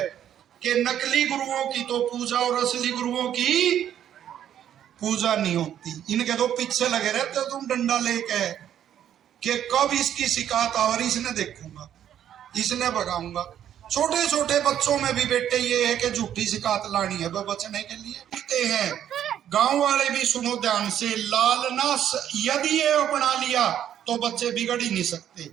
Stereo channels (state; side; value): quieter; left; 10.3 dB